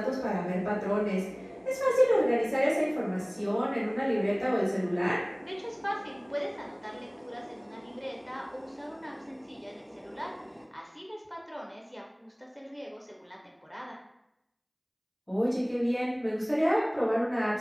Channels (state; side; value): identical; both; correlation 1.00